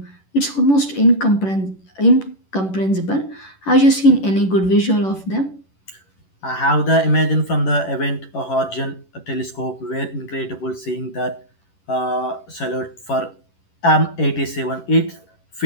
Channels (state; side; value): late; right; 11 ms